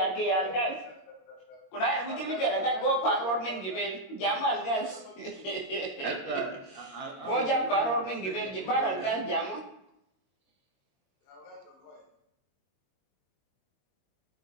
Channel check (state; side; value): late; right; 21 ms